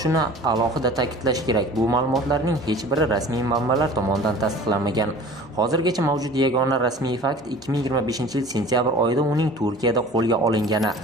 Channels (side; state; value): both; normal; correlation 0.44